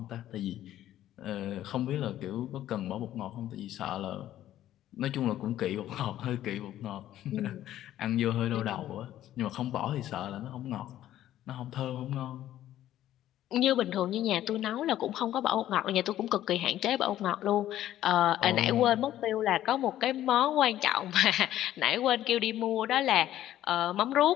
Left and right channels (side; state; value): right; quieter; 12.8 dB